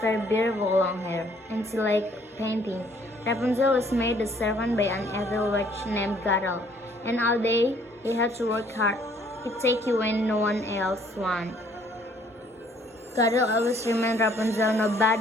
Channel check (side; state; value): both; normal; correlation 0.62